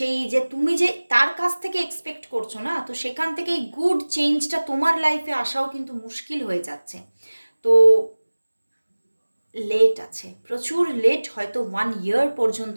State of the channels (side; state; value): both; inverted; correlation -1.00